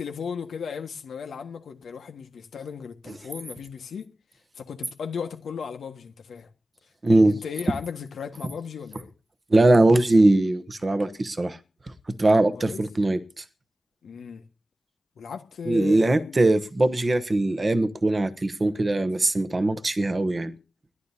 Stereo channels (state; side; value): normal; both; correlation 0.97